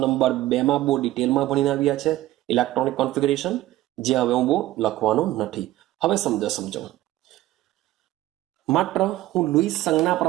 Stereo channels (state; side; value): quieter; left; 15.9 dB